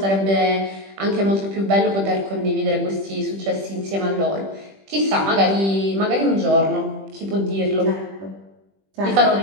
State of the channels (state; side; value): late; left; 20 ms